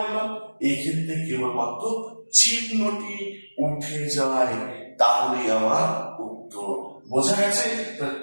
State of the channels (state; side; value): inverted; both; correlation -1.00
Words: এই ক্ষেত্রে কেবলমাত্র চিহ্নটি উঠে যায়, তাহলে আমার উত্তর। বোঝা গেছে?